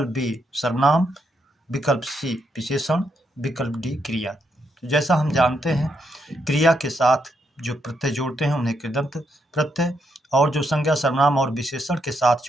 बी सर्वनाम, विकल्प सी विशेषण, विकल्प डी क्रिया। जैसा हम जानते हैं क्रिया के साथ जो प्रत्यय जोड़ते हैं उन्हें कृदंत प्रत्यय, और जो संज्ञा, सर्वनाम और विशेषण के साथ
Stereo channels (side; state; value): both; normal; correlation 0.79